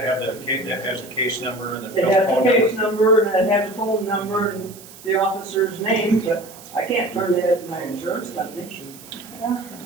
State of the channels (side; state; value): right; noise; hiss, 19 dB below the sound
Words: have the case, that has a case number and the It phone has the number? case number and it has the phone number and the officer's name, but I can't turn it in my insurance company.